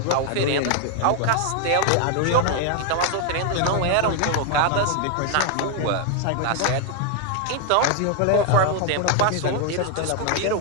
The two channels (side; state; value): both; different; correlation 0.00